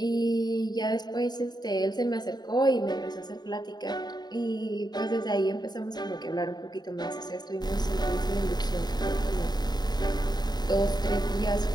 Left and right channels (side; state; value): right; late; 0.20 ms